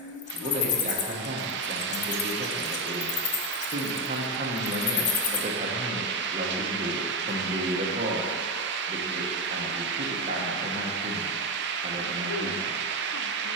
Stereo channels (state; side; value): normal; both; correlation 0.12